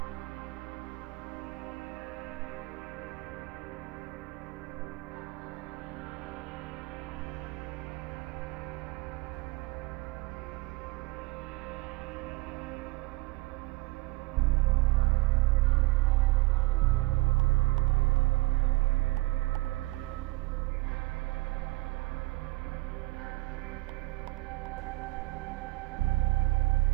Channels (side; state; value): left; quieter; 19.2 dB